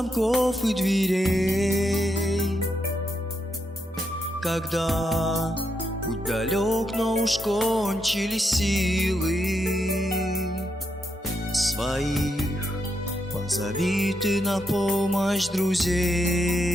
и дверей, когда путь далек, но уж кончились силы. Своих позови ты на помощь друзей,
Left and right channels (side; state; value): both; normal; correlation 0.81